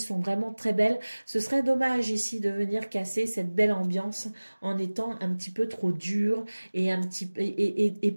vraiment très belles. Ce serait dommage ici de venir casser cette belle ambiance en étant un petit peu trop dur et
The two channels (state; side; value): inverted; both; correlation -1.00